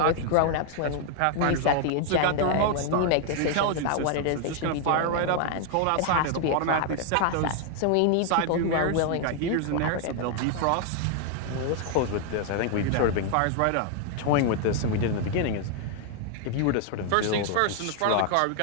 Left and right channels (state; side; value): different; both; correlation 0.00